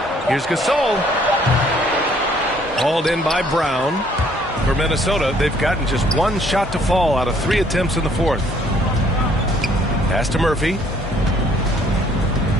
Here's Gasol. Hauled in by Brown. For Minnesota, they've gotten just one shot to fall out of 3 attempts in the fourth. Pass to Murphy.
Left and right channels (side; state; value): both; normal; correlation 0.62